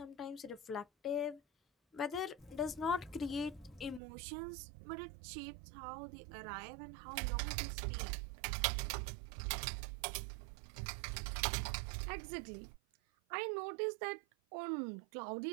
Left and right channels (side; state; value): left; drops out; at 4.0 s